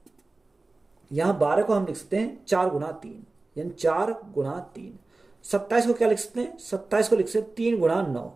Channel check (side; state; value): left; quieter; 3.3 dB